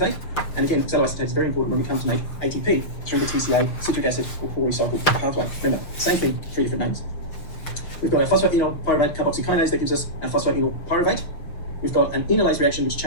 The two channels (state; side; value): late; right; 6.8 ms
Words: And again, oxaloacetate is very important when we come to make ATP through the TCA, citric acid, or Cori cycle pathway. Remember, same thing, 3 different names. We've got our phosphoenol pyruvate carboxykinase that gives us our phosphoenol pyruvate. We've got an enolase reaction which